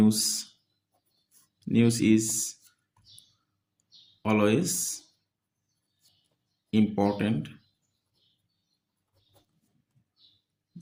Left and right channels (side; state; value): both; identical; correlation 1.00